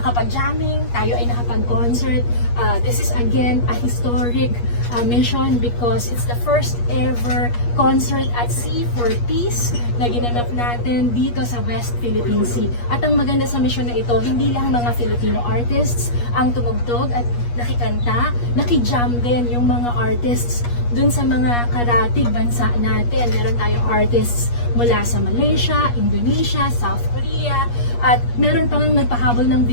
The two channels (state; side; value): late; right; 8.4 ms